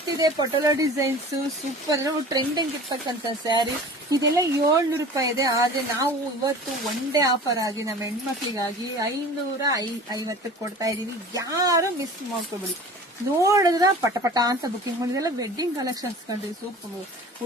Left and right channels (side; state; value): both; normal; correlation 0.41